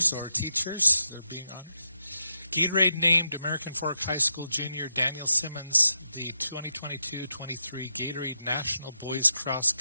or teachers, they're being honored. Gatorade named American Fork High School junior Daniel Simmons the 2022-23 Gatorade National Boys Cross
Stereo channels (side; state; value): both; inverted; correlation -0.85